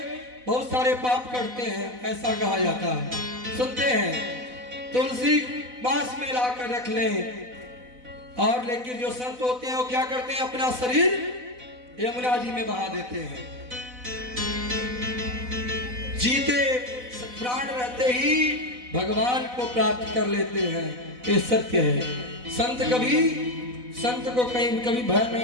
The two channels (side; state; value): left; late; 4.0 ms